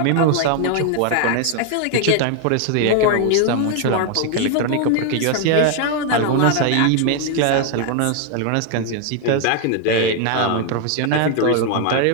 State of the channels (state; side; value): different; both; correlation 0.00